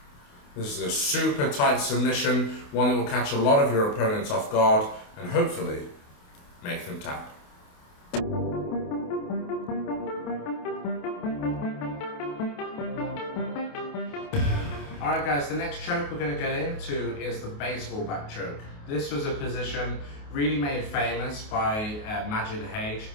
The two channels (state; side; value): late; right; 28 ms